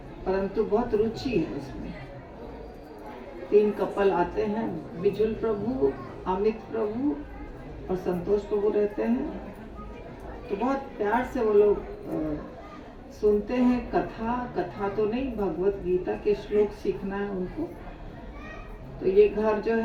परंतु बहुत रुचि है उसमें। 3 कपल आते हैं, बिजुल प्रभु, अमित प्रभु और संतोष प्रभु रहते हैं। तो बहुत प्यार से वो लोग सुनते हैं कथा तो नहीं, भगवत गीता के श्लोक सीखना है उनको। तो ये घर जो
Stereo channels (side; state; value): both; identical; correlation 1.00